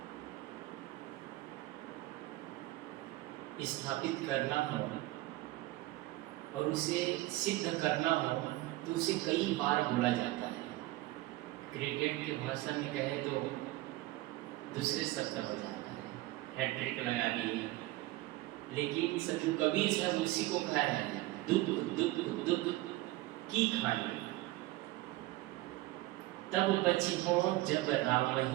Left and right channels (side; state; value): left; quieter; 18.4 dB